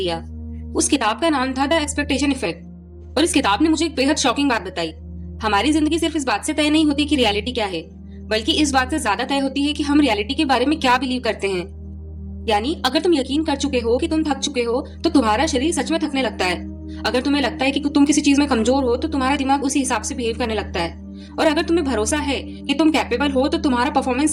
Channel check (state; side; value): identical; both; correlation 1.00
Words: उस किताब का नाम था द एक्सपेक्टेशन इफेक्ट और इस किताब ने मुझे एक बेहद शॉकिंग बात बताई। हमारी जिंदगी सिर्फ इस बात से तय नहीं होती कि रियलिटी क्या है, बल्कि इस बात से ज्यादा तय होती है कि हम रियलिटी के बारे में क्या बिलीव करते हैं। यानी अगर तुम यकीन कर चुके हो कि तुम थक चुके हो तो तुम्हारा शरीर सच में थकने लगता है। अगर तुम्हें लगता है कि तुम किसी चीज में कमजोर हो तो तुम्हारा दिमाग उसी हिसाब से बिहेव करने लगता है। और अगर तुम्हें भरोसा है कि तुम कैपेबल हो तो तुम्हारा